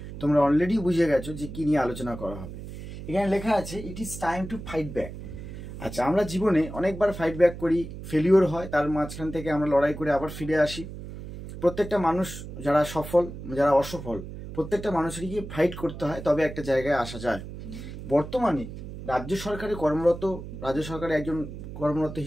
তোমরা অলরেডি বুঝে গেছো যে কী নিয়ে আলোচনা করা হবে। এখানে লেখা আছে ইট is time to fight back. আচ্ছা, আমরা জীবনে অনেকবার ফাইট ব্যাক করি, ফেলিওর হয়, তার মাঝখান থেকে আমরা লড়াই করে আবার ফিরে আসি। প্রত্যেকটা মানুষ, যারা সফল যারা অসফল, প্রত্যেকটা মানুষেরই ফাইট করতে হয়, তবে একটা জায়গায় আসা যায়। বর্তমানে রাজ্য সরকারে একজন কর্মরত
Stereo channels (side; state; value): right; noise; hum, 11 dB below the sound